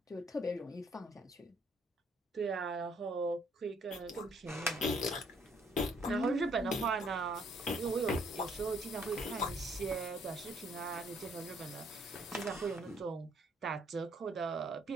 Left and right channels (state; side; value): normal; both; correlation 0.66